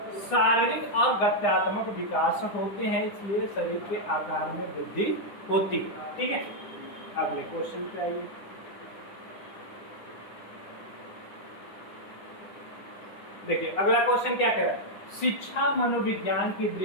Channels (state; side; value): late; right; 9.8 ms